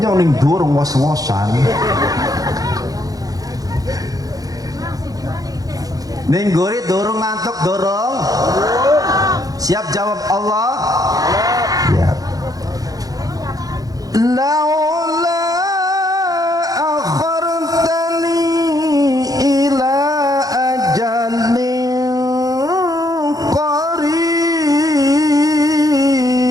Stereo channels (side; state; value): left; late; 0.18 ms